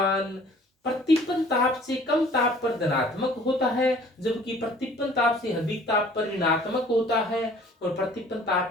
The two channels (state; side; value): normal; both; correlation 0.53